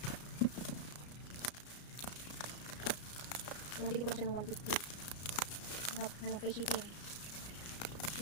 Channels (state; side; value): late; right; 34 ms